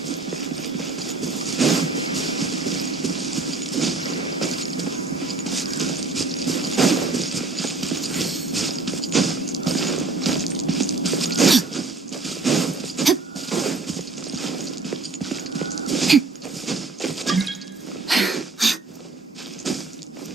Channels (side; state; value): left; quieter; 3.8 dB